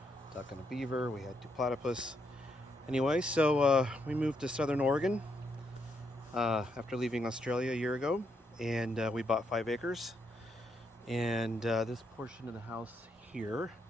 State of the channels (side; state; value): both; normal; correlation 0.78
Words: duck and a beaver. We had 2 platypus. Anyway, so we moved to Southern Oregon after leaving Australia a year ago, and we bought 5 acres. And this portion of the house here,